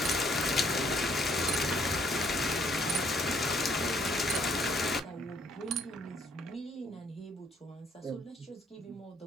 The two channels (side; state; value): both; normal; correlation 0.66